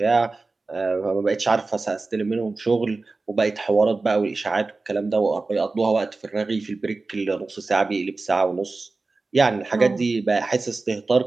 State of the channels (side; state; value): left; quieter; 3.6 dB